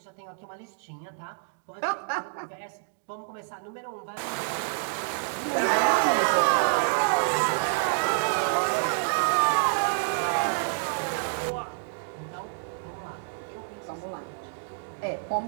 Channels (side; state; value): left; silent; digital silence